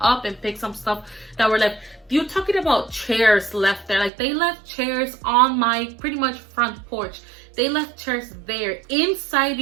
up and picked some stuff that were left. You're talking about chairs left there. Like they left chairs on my pretty much front porch. They left chairs there inside,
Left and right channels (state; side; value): drops out; left; at 4.1 s